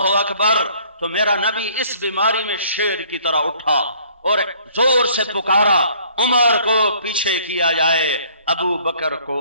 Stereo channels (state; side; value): inverted; both; correlation -0.58